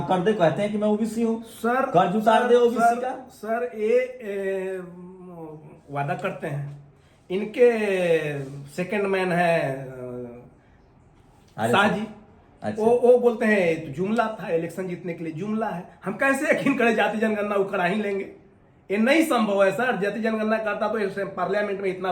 कर दे, कहते हैं कि मैं ओबीसी हूँ, सर कर्ज उतार दे ओबीसी का। सर ये वादा करते हैं, इनके सेकंड मैन है शाह जी। अच्छा। वो बोलते हैं तो जुमला था, इलेक्शन जीतने के लिए जुमला है। हम कैसे यकीन करें जाति जनगणना वो करा ही लेंगे? ये नहीं संभव है सर। जाति जनगणना करता तो पार्लियामेंट में इतना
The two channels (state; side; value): identical; both; correlation 1.00